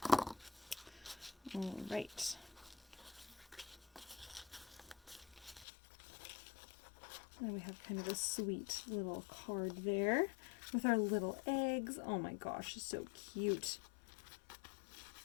All right. And we have kind of a sweet little card there with our little eggs. Oh my gosh, it's so cute.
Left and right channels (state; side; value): drops out; right; at 5.7 s